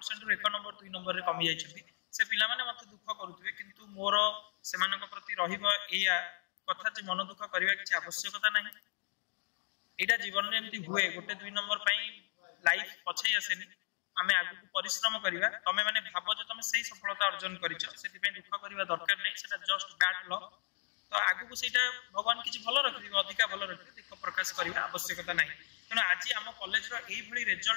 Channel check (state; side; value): silent; right; 54 dB below the other